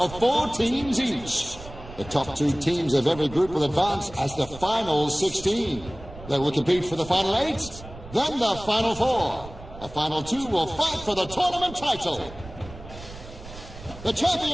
4 teams each. The top 2 teams of every group will advance as the final 16. They will compete for the final 8, Then the Final Four. The Final Two will fight for the tournament title. The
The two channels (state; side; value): noise; right; rumble, 16 dB below the sound